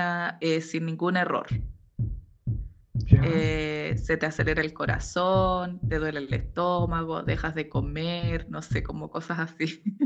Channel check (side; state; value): both; identical; correlation 1.00